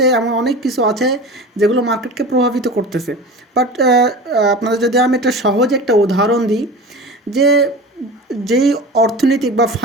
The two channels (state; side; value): normal; both; correlation 0.33